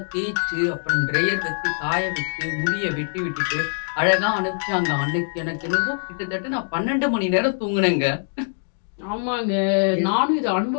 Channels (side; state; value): right; silent; digital silence